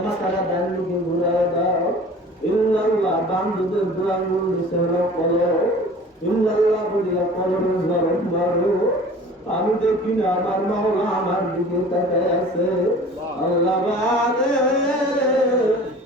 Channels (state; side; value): normal; both; correlation 0.44